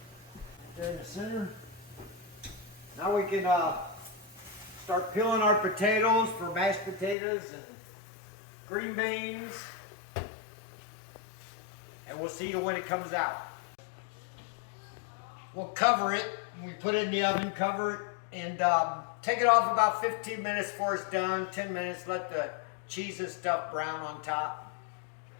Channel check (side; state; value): right; drops out; at 7.2 s